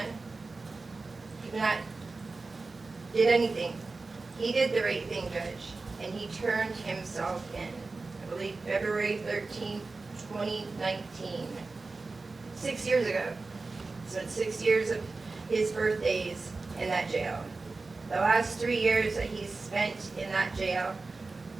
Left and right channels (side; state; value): left; quieter; 3.7 dB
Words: could not, did anything. He did the right thing, Judge, and he turned himself in. I believe February 13, 2019. 6 years ago. Spent 6 years of his birthdays in that jail. The last 3 years that he's spent in that jail,